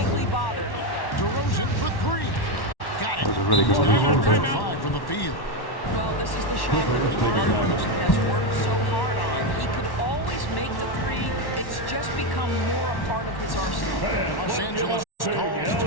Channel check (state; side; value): late; right; 1.1 ms